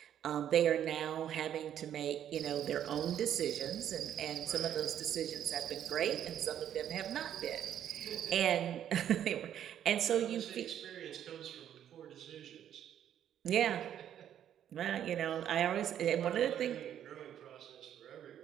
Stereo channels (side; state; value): left; quieter; 10.2 dB